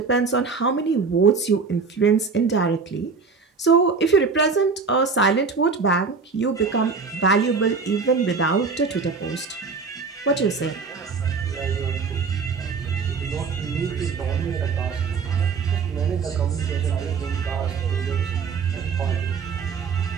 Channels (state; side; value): quieter; left; 5.0 dB